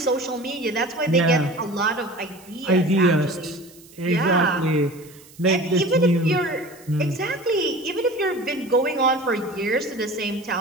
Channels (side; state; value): right; noise; hiss, 24 dB below the sound